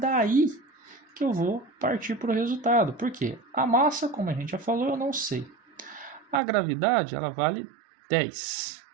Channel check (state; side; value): drops out; left; at 6.4 s